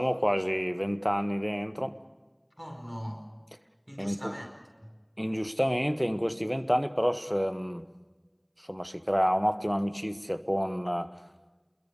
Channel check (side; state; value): both; identical; correlation 1.00